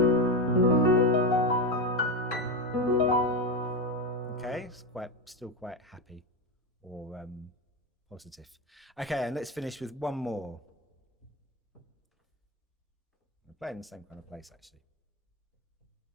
Okay, it's still quite happy or positive. Okay, and let's finish with one more. Play in the same kind of place actually.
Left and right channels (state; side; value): normal; both; correlation 0.13